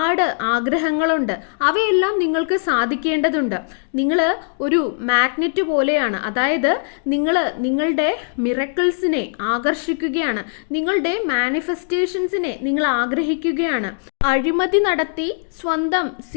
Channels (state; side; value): silent; right; 65 dB below the other